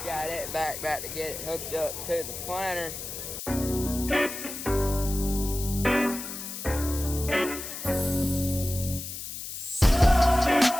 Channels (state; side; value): noise; left; hiss, 8 dB below the sound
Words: got it back to get it hooked up to the planter.